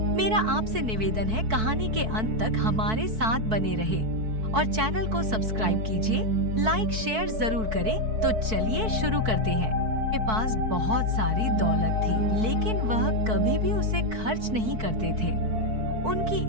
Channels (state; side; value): late; left; 4.6 ms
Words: मेरा आपसे निवेदन है, कहानी के अंत तक हमारे साथ बने रहे और चैनल को सब्सक्राइब कीजिए, लाइक शेयर जरूर करें। तो चलिए शुरू करते हैं। के पास बहुत सारी दौलत थी, लेकिन वह कभी भी उसे खर्च नहीं करते थे।